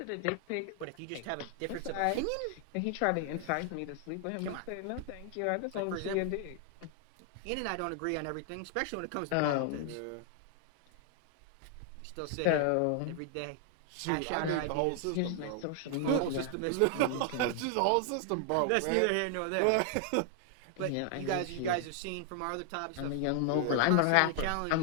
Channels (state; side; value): different; both; correlation 0.00